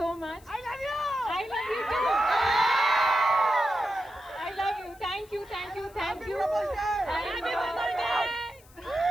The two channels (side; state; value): left; noise; hiss, 26 dB below the sound